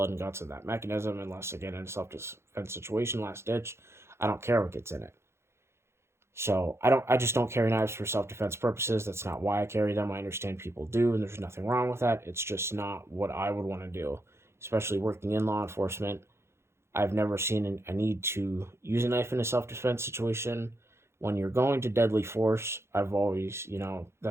and guts in that mechanism unless, again, in a self-defense situation, last ditch. I don't care what gets in it. So I just don't carry knives for self-defense purposes. That's not why I carry them. I understand people do, and there's nothing wrong with that. It's just not what I would want to do, especially working in law enforcement. I've never seen a need to use a knife in a self-defense situation. When you're going to deadly force, I've always,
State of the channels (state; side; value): late; left; 0.13 ms